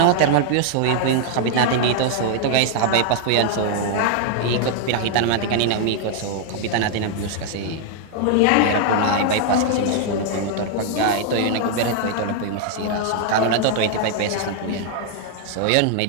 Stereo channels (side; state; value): both; different; correlation 0.00